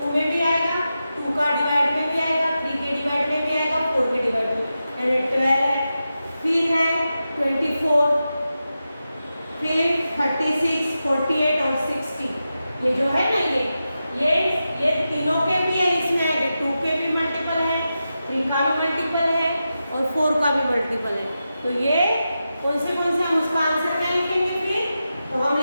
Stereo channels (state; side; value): inverted; both; correlation -0.91